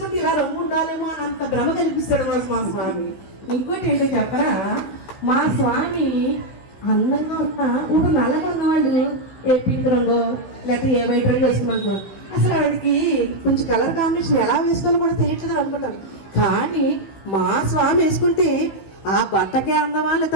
ఇలా రంగు ఉండాలేమో అంత భ్రమ కల్పిస్తాడు మా స్వామి. ఇంకోటి ఏంటో చెప్పరా, మా స్వామి అందంగా ఉన్న ఇప్పుడు నల్లగా ఉన్నవాళ్ళు ఏ పింక్ రంగు లేకపోతే ఏ వైట్ రంగు వేసుకున్నాను, అసలు వాడికి కొంచెం కలర్ కాంబినేషన్ ఎలా వేసుకోవాలో కూడా తెలియట్లేదు అనుకుంటాను. కానీ మా స్వామి వేసుకుంటే ఆ బట్టకే అందమా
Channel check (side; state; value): right; late; 16 ms